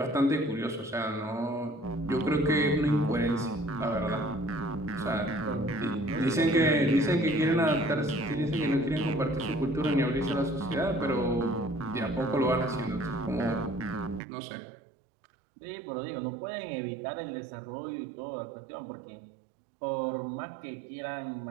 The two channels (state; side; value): drops out; left; at 14.2 s